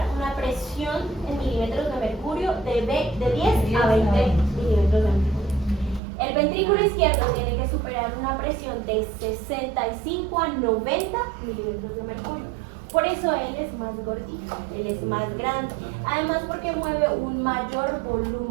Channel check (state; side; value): drops out; left; at 6.0 s